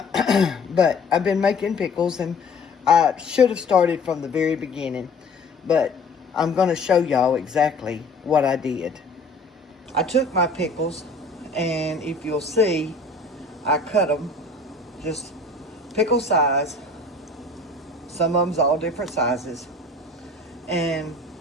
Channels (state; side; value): quieter; right; 3.1 dB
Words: I've been making pickles, and I should have started from the very beginning. But I'm going to show y'all exactly what I did. I took my pickles, and if you'll see, I cut them just pickle size. Some of them's all different sizes. And